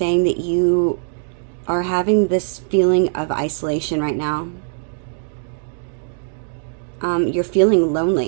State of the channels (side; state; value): left; silent; digital silence